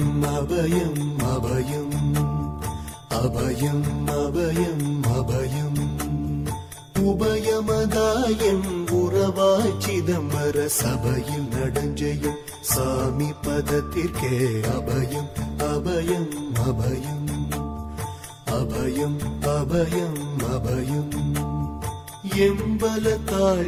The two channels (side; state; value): both; identical; correlation 1.00